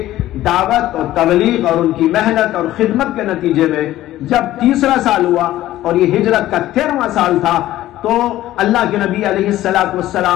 دعوت اور تبلیغ اور ان کی محنت اور خدمت کے نتیجے میں جب 3 سال ہوا اور یہ ہجرت کا 13واں سال تھا، تو اللہ کے نبی علیہ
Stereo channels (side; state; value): right; quieter; 14.6 dB